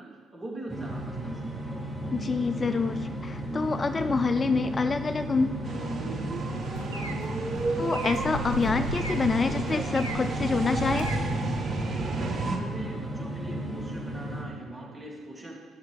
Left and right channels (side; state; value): both; normal; correlation 0.79